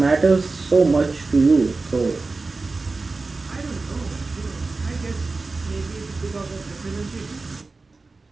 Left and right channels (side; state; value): left; quieter; 3.7 dB